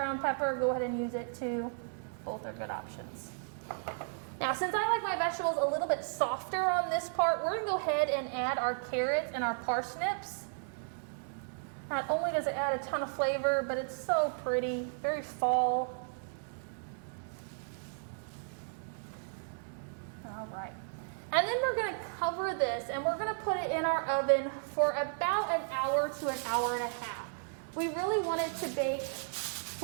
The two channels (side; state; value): left; silent; digital silence